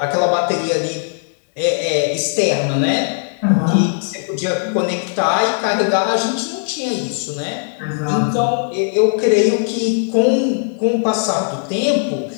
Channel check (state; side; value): silent; right; digital silence